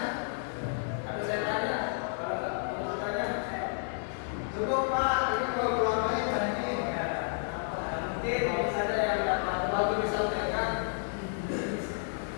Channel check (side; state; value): right; silent; digital silence